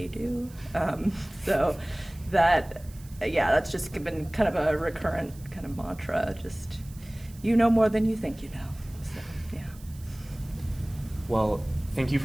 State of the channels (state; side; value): noise; right; hiss, 23 dB below the sound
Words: do. So that's just been kind of a recurrent kind of mantra. Just, you know more than you think you know. So, yeah. Well, thank you